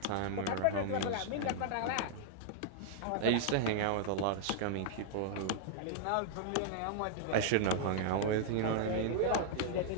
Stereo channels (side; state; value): both; different; correlation -0.01